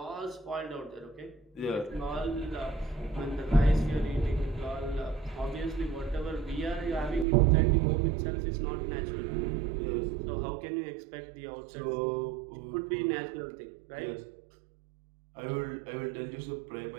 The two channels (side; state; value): left; drops out; at 7.2 s